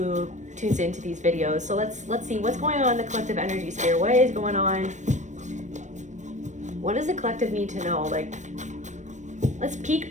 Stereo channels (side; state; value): left; late; 0.35 ms